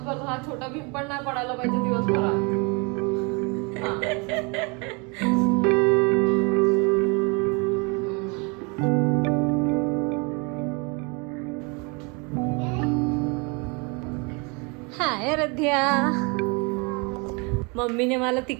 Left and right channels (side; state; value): left; quieter; 31.1 dB